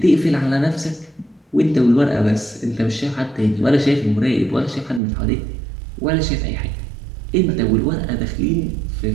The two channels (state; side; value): drops out; left; at 5.0 s